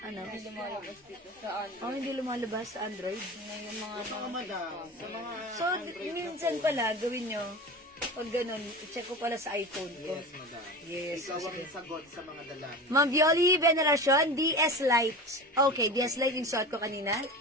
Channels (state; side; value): normal; both; correlation 0.30